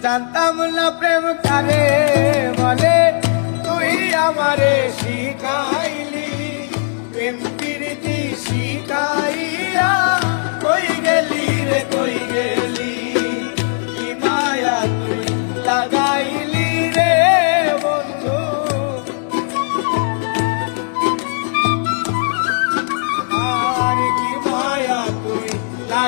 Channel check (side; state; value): right; silent; digital silence